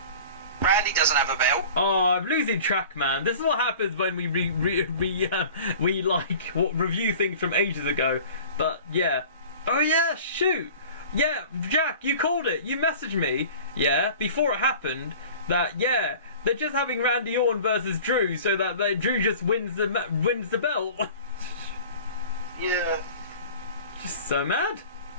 Randy doesn't have a belt. Oh, I'm losing track, man. This is what happens when we review things from ages ago. But yeah. Oh yeah, shoot. Yeah, Jack, you called it. You messaged me. Yeah, before it happened. That they're just having Randy Orton versus Drew, so that Drew just wins the belt. Yeah. Just so mad.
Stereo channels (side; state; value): both; inverted; correlation -0.42